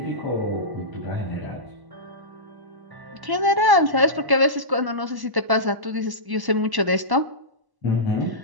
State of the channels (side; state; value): left; late; 1.1 ms